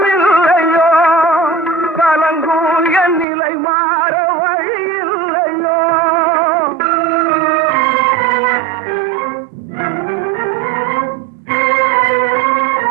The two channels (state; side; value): drops out; left; at 3.2 s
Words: கலங்கும் என் நிலை மாற வழியில்லையோ.